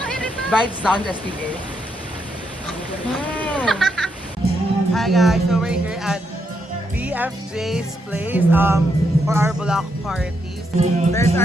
Vibes down STA. Hi guys, so we're here at BFJ's place for our block parties. There's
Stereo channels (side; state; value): both; normal; correlation 0.79